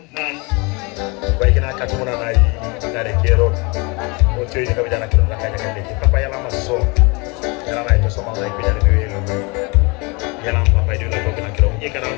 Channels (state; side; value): quieter; right; 28.6 dB